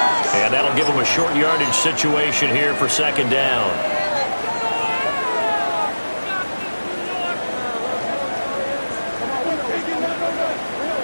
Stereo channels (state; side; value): inverted; both; correlation -1.00